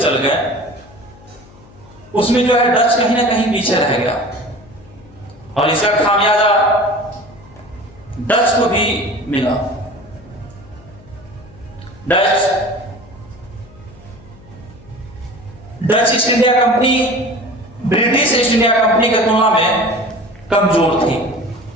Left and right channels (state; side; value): noise; left; hum, 24 dB below the sound